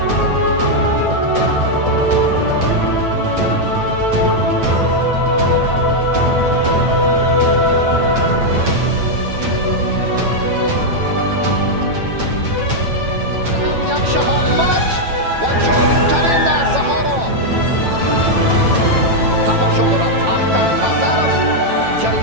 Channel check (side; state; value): left; late; 9.0 ms